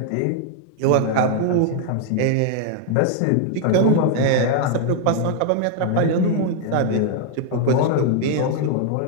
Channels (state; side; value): different; both; correlation 0.00